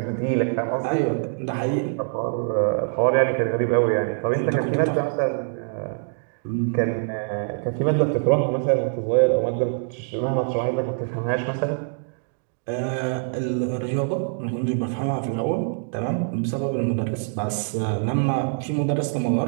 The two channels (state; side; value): silent; left; digital silence